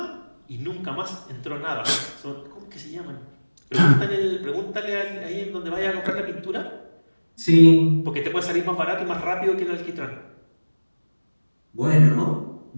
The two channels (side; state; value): both; inverted; correlation -1.00